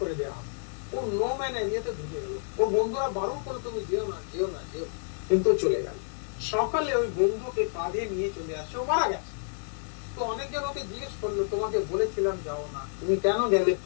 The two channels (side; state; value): right; silent; 58 dB below the other